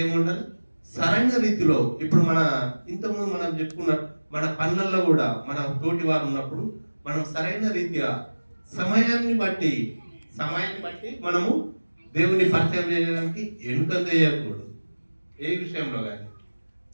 ఏముండాలి, సరైన రీతిలో. ఇప్పుడు మన ఇంతకుముందు మనం చెప్పుకున్న మన పనులలో కూడా మన తోటి వారు ఉన్నప్పుడు మనం సరైన రీతిగా సమయాన్ని బట్టి మనము దేవుని పరిచయం చేయడానికి వెనుకంద చేయకూడదు ఏ విషయంలో కానీ.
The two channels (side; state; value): both; inverted; correlation -1.00